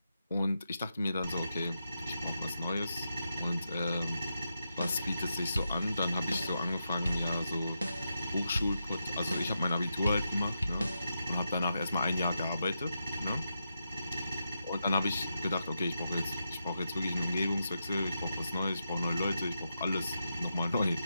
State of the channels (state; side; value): inverted; both; correlation -0.86